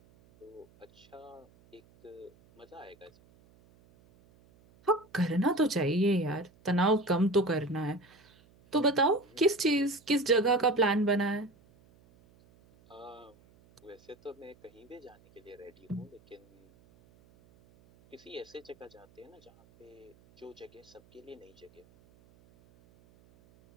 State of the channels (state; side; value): noise; right; hum, 29 dB below the sound